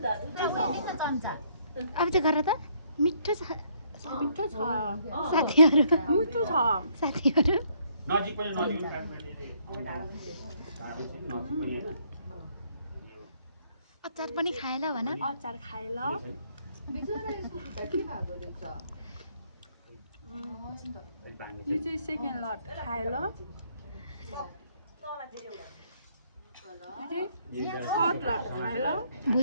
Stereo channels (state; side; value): inverted; both; correlation -0.67